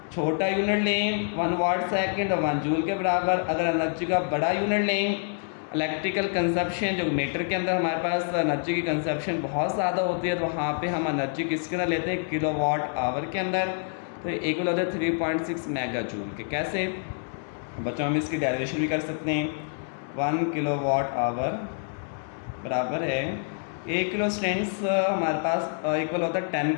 छोटा यूनिट लें 1 वाट सेकंड और 1 जूल के बराबर। अगर एनर्जी का बड़ा यूनिट लें, इलेक्ट्रिकल कंजप्शन जो मीटर के अंदर हमारे पास एनर्जी की कंजप्शन बहुत ज़्यादा होती है, तो वहाँ पे हम एनर्जी किसके अंदर लेते हैं, किलो वाट आवर के अंदर। तो इक्वल होता है 3.6 मेगा जूल के। कैसे बच्चों, हम इसकी डेरिवेशन भी कर सकते हैं। 1 किलो वाट आवर बराबर है 1 किलो स्टूडेंट्स हमारे पास इक्वल होता है 10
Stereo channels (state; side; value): silent; right; digital silence